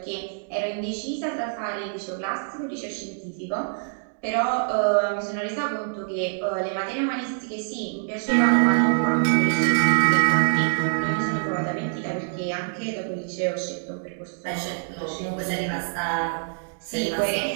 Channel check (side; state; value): left; silent; digital silence